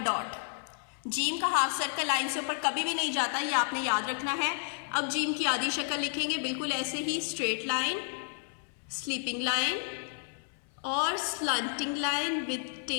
डॉट। जीम का हाफ सर्कल लाइन से ऊपर कभी भी नहीं जाता, ये आपने याद रखना है। अब जीम की आधी शक्ल लिखेंगे बिल्कुल ऐसे ही, स्ट्रेट लाइन, स्लीपिंग लाइन और स्लंटिंग लाइन विद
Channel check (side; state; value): right; silent; 57 dB below the other